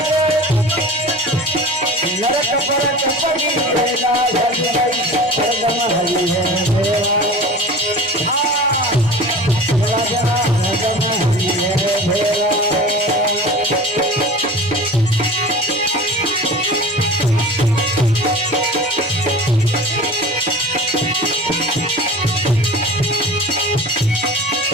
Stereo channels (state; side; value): normal; both; correlation 0.37